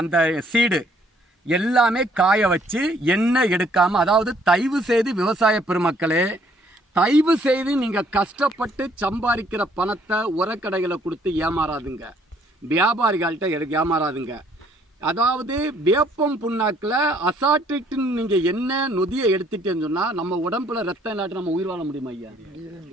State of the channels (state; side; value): normal; both; correlation 0.64